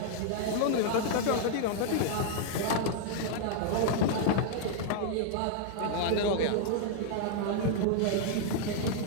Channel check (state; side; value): different; both; correlation 0.00